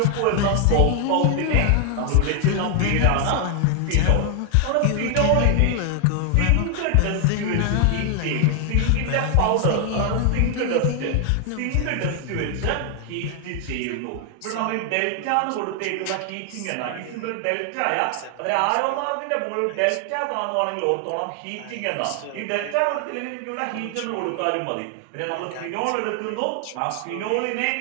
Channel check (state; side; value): different; both; correlation 0.00